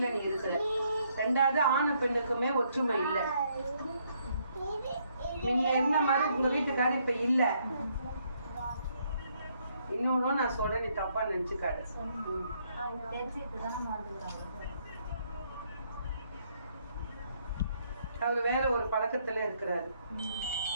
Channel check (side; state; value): both; inverted; correlation -0.71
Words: நீ இருக்கிற. 2வது ஆணு பெண்ணுக்குமே ஒற்றுமை இல்ல. நீங்க என்ன மாதிரி உங்க வீட்டுக்காரர் இப்ப இல்ல. இன்னொன்னு நான் சொல்றேன், நீ தப்பா நினைச்சுக்காடு. அவரு வேற ஒரு பழக்கத்துல இருக்கிறாரு.